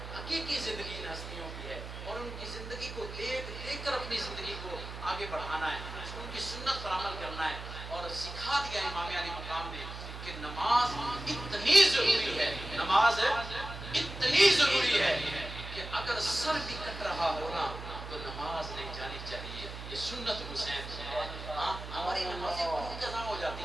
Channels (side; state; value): right; noise; hum, 10 dB below the sound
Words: حقیقی زندگی ان ہستیوں کی ہے اور ان کی زندگی کو دیکھ کر اپنی زندگی کو آگے بڑھانا ہے، ان کی سنت پر عمل کرنا ہے. اور سکھا دیا امام علی مقام نے کہ نماز اتنی ضروری ہے، نماز اتنی ضروری ہے کہ اگر سر بھی کٹ رہا ہونا تو نماز نہیں جانی چاہیے. یہ سنت حسین ہے. ہماری نمازیں کیوں قضا ہو